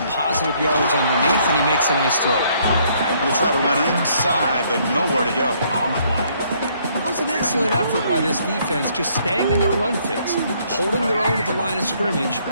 positive yards underneath, and he makes a nice throw. Going to try to run inside, but nowhere to go. It was an excellent effort by this defense, just staying in their run fits, holding their own at the line of scrimmage,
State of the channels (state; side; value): inverted; both; correlation -0.67